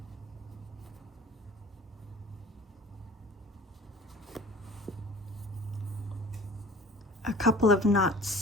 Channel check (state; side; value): normal; both; correlation 0.44